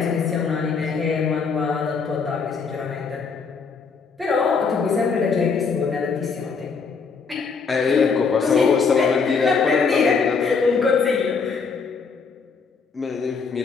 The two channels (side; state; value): right; quieter; 5.2 dB